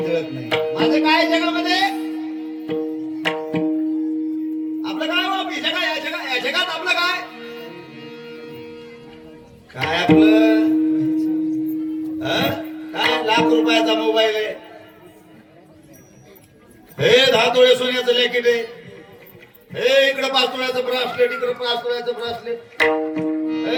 काय जगात आपलं काय काय आपलं काय लाख रुपयाचा मोबाईल आहे, हे 10 तोळे सोन्याचं लॅकेट आहे, हे इकडे 5 तोळ्याचं ब्रासलेट, इकडे 5 तोळ्याचं ब्रासलेट.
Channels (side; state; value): both; identical; correlation 1.00